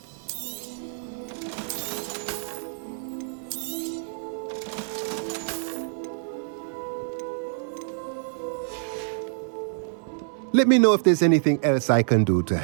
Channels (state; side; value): silent; left; 58 dB below the other